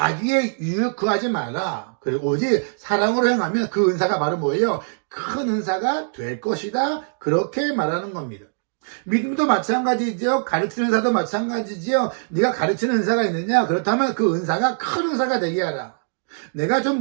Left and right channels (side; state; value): left; silent; digital silence